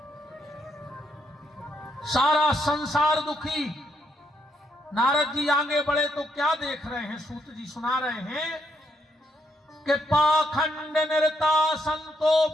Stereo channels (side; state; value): both; normal; correlation 0.76